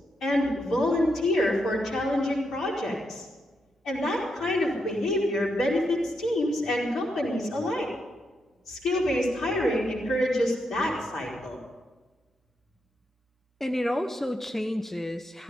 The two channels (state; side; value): normal; both; correlation 0.82